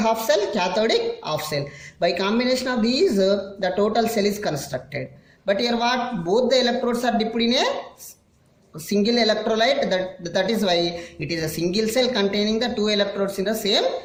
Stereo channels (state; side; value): identical; both; correlation 1.00